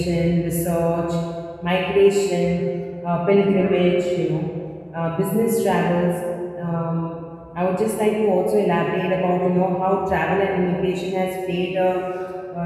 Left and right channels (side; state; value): both; identical; correlation 1.00